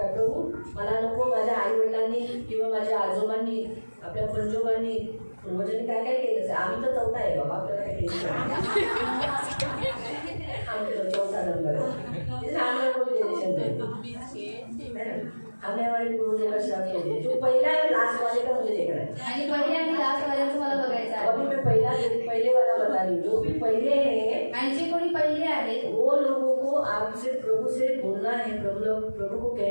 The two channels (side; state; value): both; inverted; correlation -1.00